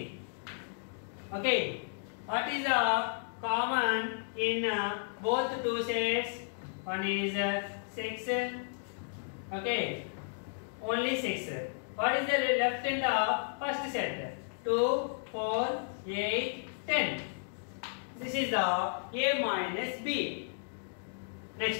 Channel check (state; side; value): silent; right; digital silence